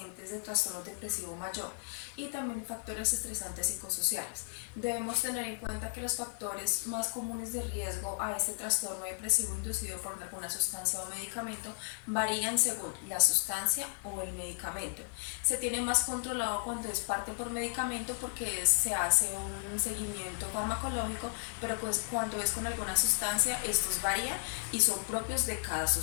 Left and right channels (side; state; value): right; silent; digital silence